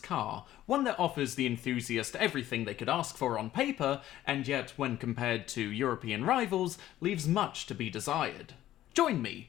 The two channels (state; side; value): quieter; right; 13.5 dB